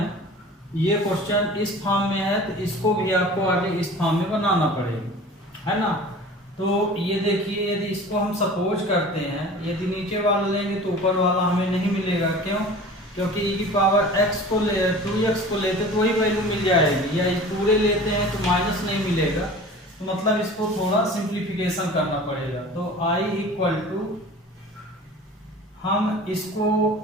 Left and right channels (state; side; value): normal; both; correlation 0.41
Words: ये क्वेश्चन इस फॉर्म में है तो इसको भी आपको आगे इस फॉर्म में बनाना पड़ेगा, है ना। तो ये देखिए, यदि इसको हम सपोज करते हैं, यदि नीचे वाला लेंगे तो ऊपर वाला हमें नहीं मिलेगा, क्यों, क्योंकि e की पावर x को 2x को लेते तो वही वैल्यू मिल जाएगी, या पूरे लेते हैं तो माइनस नहीं मिलेगा, तो तो मतलब इसको थोड़ा सिंप्लीफिकेशन करना पड़ेगा। तो I इक्वल टू, हम इसको